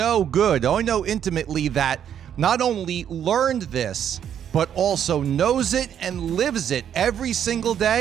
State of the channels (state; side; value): quieter; left; 9.3 dB